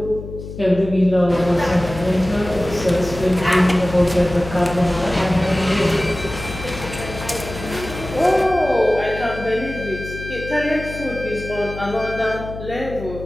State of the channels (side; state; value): left; noise; hum, 11 dB below the sound